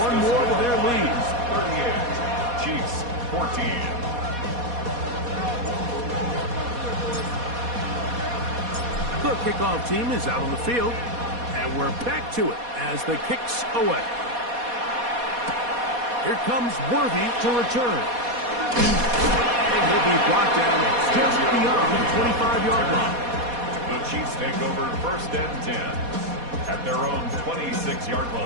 one more to their lead. 38, Chiefs 14. The kickoff team is out on the field. And we're back to it as the kick's away. Here comes Worthy to return. And he'll be brought down just beyond the 25-yard line. The Chiefs take over first and 10 at their own 26-yard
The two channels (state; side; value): late; left; 4.2 ms